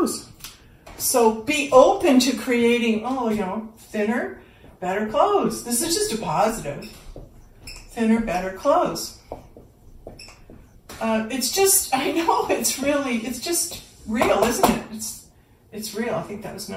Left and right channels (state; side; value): identical; both; correlation 1.00